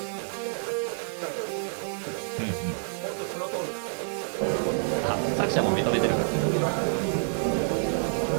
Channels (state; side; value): silent; left; digital silence